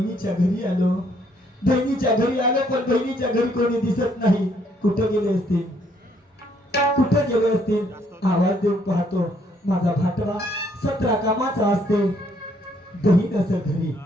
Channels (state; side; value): normal; both; correlation 0.68